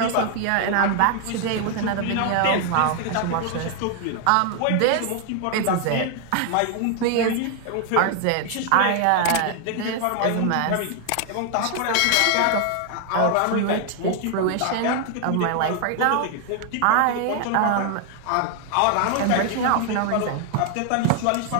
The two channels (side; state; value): both; different; correlation 0.00